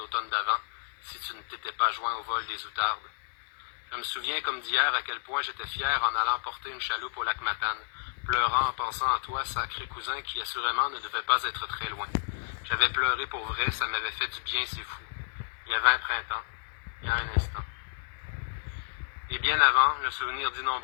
d'avant, si tu ne t'étais pas joint au vol des outardes. Je me souviens comme d'hier à quel point j'étais fier en allant porter une chaloupe au lac Matane, pleurant en pensant à toi, sacré cousin, qui assurément ne devait pas être très loin. J'avais pleuré pour vrai, ça m'avait fait du bien, c'est fou. Il y avait un printemps, il y a un instant. Et bien avant, le souvenir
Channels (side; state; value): right; silent; 57 dB below the other